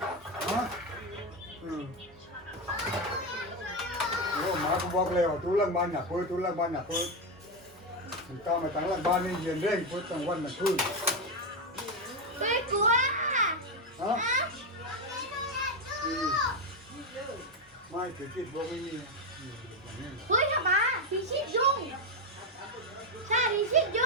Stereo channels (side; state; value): both; normal; correlation 0.08